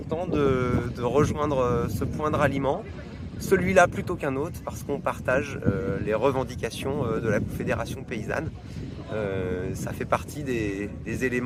de rejoindre ce point de ralliement, celui-là plutôt qu'un autre, parce qu'on partage les revendications de la Confédération paysanne. Ça fait partie des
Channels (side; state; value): both; identical; correlation 1.00